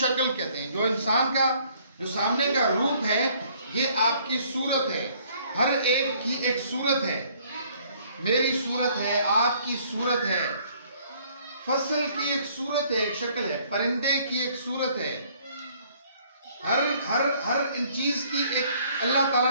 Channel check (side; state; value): both; inverted; correlation -0.61